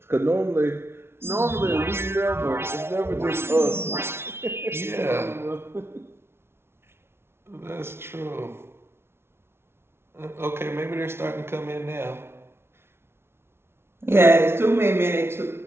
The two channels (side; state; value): left; late; 0.12 ms